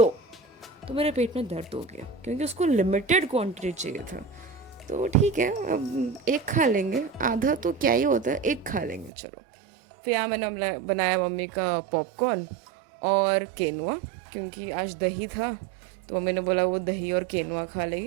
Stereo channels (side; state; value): left; drops out; at 9.1 s